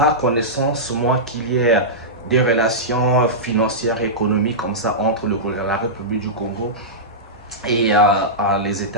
connaissance, moi, qu'il y ait des relations financières et économiques comme ça entre la République du Congo et les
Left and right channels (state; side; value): normal; both; correlation -0.14